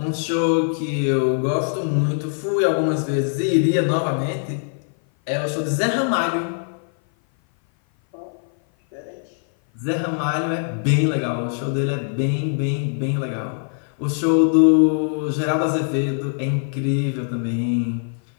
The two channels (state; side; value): silent; right; 56 dB below the other